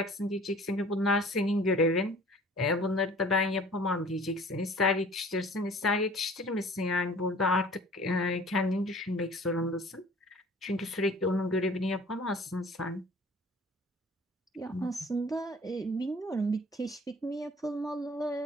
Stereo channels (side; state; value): both; normal; correlation 0.48